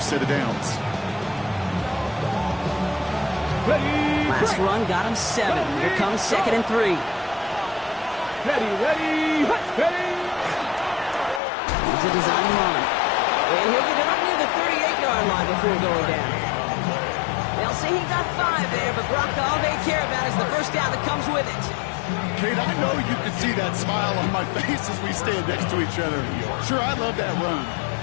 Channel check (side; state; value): right; drops out; at 11.4 s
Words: of downs. Last run got him 7. Here comes 2nd and 3. Ready. He's a design run. And he'll get it up near the 38-yard line before going down. They'll say he got 5 there, but Brock, all they care about is the first down that comes with it. Kate, I know you can see that smile on my face as we stand next to each other. Sure, I love that run.